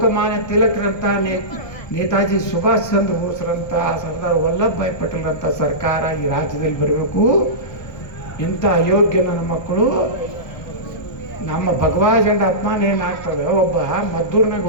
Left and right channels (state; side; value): late; right; 1.2 ms